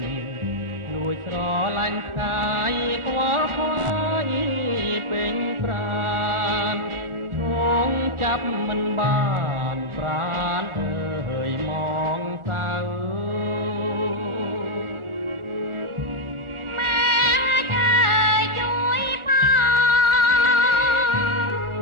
លួចស្រឡាញ់ផ្កាយខ្វល់ខ្វាយពេញប្រាណឈងចាប់មិនបានប្រាណអើយមកសៅ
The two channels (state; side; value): late; left; 1.4 ms